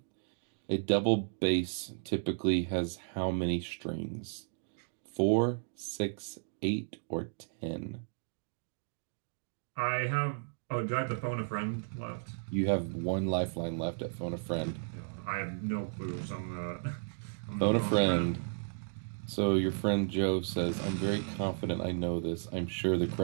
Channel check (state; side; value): silent; left; digital silence